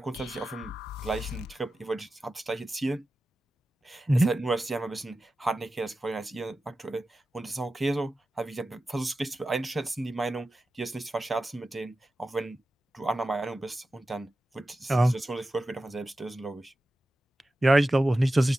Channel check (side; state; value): both; normal; correlation 0.93